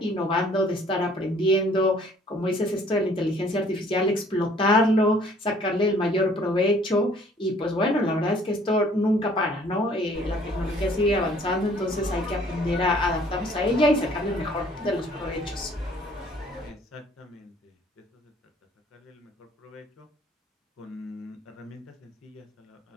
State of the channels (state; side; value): normal; both; correlation 0.58